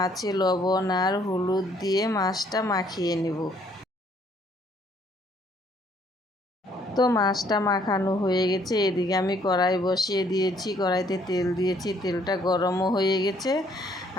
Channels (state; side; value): normal; both; correlation 0.65